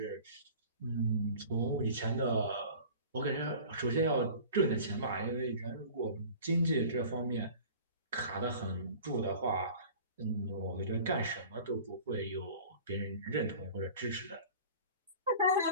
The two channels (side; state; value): both; inverted; correlation -0.42